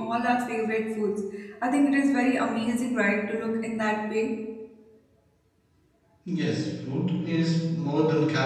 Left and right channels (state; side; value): identical; both; correlation 1.00